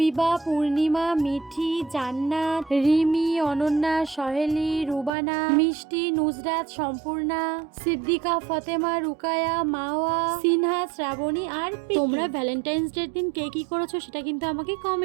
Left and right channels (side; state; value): left; drops out; at 5.1 s